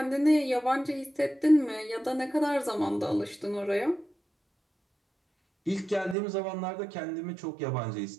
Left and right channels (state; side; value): drops out; left; at 6.2 s